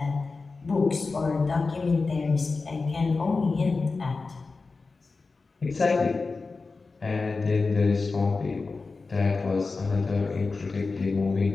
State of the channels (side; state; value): right; quieter; 4.1 dB